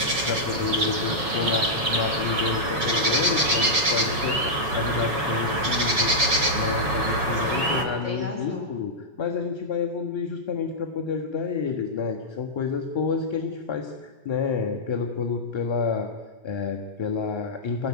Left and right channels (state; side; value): late; left; 7.1 ms